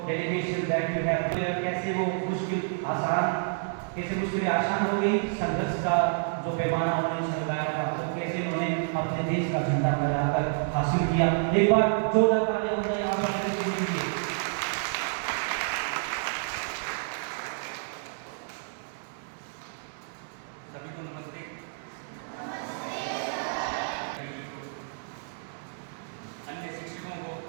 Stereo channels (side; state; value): left; silent; 58 dB below the other